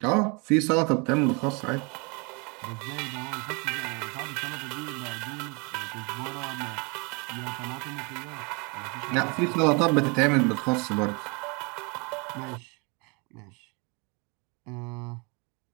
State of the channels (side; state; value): left; quieter; 31.0 dB